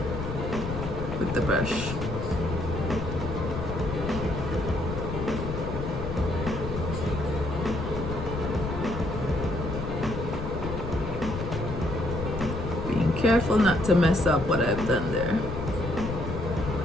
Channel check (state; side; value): noise; left; rumble, 6 dB below the sound